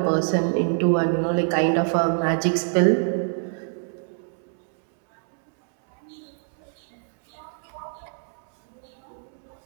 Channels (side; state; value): left; silent; 61 dB below the other